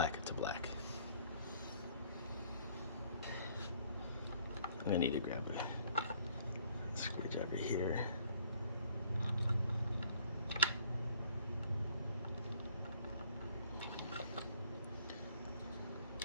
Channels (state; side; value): inverted; both; correlation -0.60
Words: to black. I'm gonna need to grab a screwdriver here.